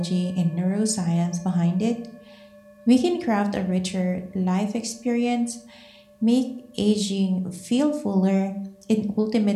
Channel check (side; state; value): both; identical; correlation 1.00